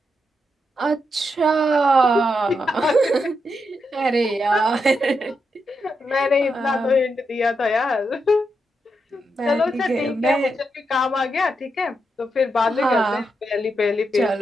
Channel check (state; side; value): normal; both; correlation 0.83